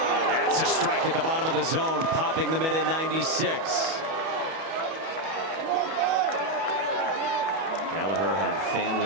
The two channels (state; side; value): late; left; 31 ms